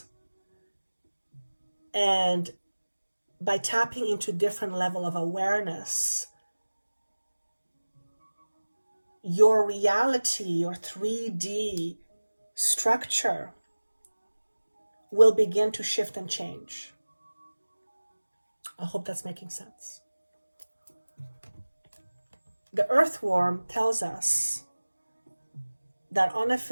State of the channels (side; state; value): both; inverted; correlation -1.00